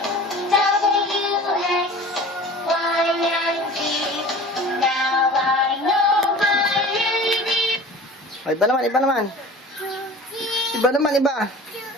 Oh, iba naman, iba naman. Iba naman, iba.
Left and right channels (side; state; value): both; normal; correlation 0.41